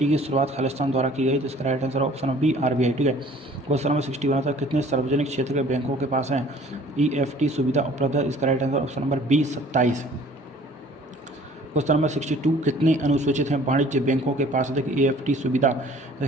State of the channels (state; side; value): normal; both; correlation 0.52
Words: की शुरुआत खालिस्तान द्वारा की गई, तो इसका right answer option B, RBI, ठीक है। क्वेश्चन नंबर 61 तक कितने सार्वजनिक क्षेत्र के बैंकों के पास है EFT सुविधा उपलब्ध है, इसका right answer option number B, 27। Question number 62 कितने अनुसूचित हैं वाणिज्य बैंकों के पास EFT सुविधा